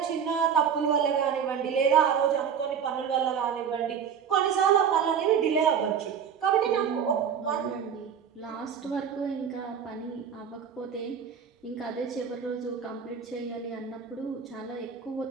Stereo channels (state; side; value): quieter; left; 7.5 dB